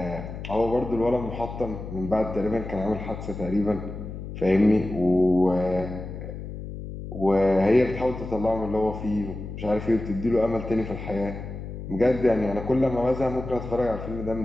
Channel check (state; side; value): noise; left; hum, 9 dB below the sound